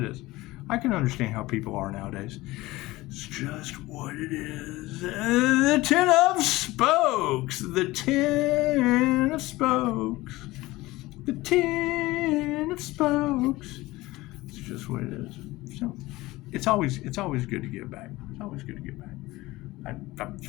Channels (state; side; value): quieter; right; 19.2 dB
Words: is. I can understand how people are nowadays. It's just what it is. The Ten of Spokes. The Ten of Spokes. The Ten of Spokes. It's just what it is. So it's always good to give back. It's always good to give back.